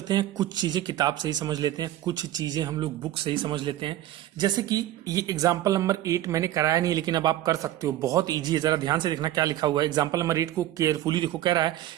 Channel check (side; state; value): left; quieter; 13.5 dB